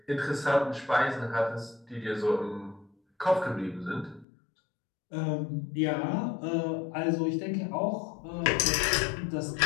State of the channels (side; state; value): right; drops out; at 4.2 s